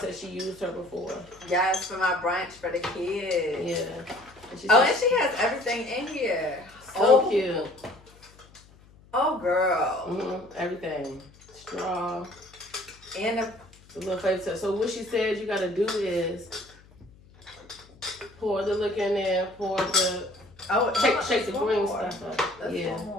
she used her before. Yes, for my brunch for the kids. Yeah. And she has everything in here. So cute. Oh, girl. Mm-hmm. Everything. Straw. And a little flavor. So what she said you gotta do is pour the liquor in there, pour the shake the green stuff up. Let's pour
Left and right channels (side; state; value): left; noise; hum, 26 dB below the sound